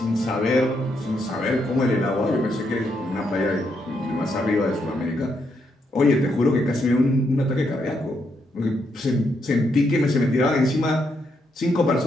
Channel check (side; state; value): both; normal; correlation 0.78